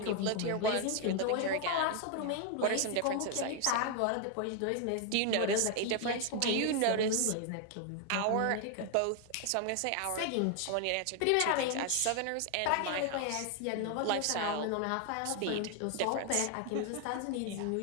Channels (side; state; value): both; different; correlation 0.00